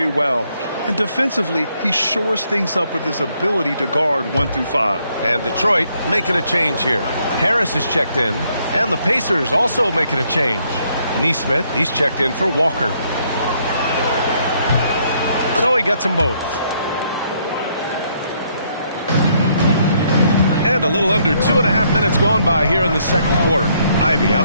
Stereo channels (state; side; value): inverted; both; correlation -0.71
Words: well. And defensively, he shores things up with his ability to guard 1 through 5. And Detroit making a change here. Harris is checked in. And the Pacers also making a change. Nesmith, he's checked in for Walker. So he gets them both. And a little under 2.5 minutes gone by here in the second quarter. Ivy